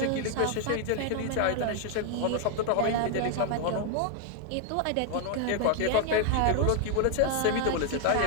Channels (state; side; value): different; both; correlation 0.00